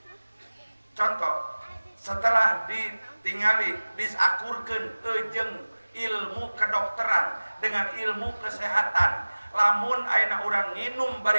Contoh setelah ditingali disakurkeun jeung ilmu kedokteran dengan ilmu kesehatan lamun ayeuna urang nginum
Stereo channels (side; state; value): both; inverted; correlation -1.00